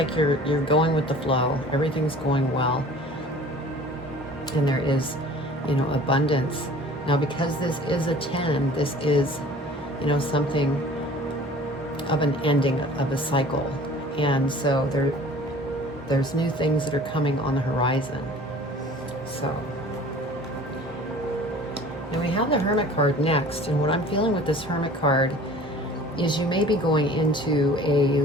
you're going with the flow. Everything's going well. And there is, abundance. Now, because this is a 10, this is, something of an ending of a cycle. And so there's new things that are coming on the horizon. So, and we have the Hermit card next. And what I'm feeling with this Hermit card is you may be going into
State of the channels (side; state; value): both; normal; correlation 0.46